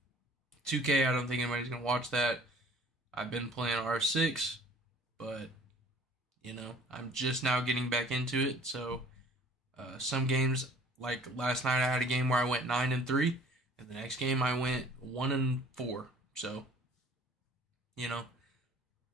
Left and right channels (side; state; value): both; normal; correlation 0.51